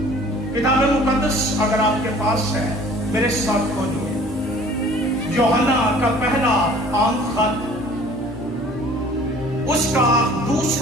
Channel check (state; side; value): noise; left; hum, 15 dB below the sound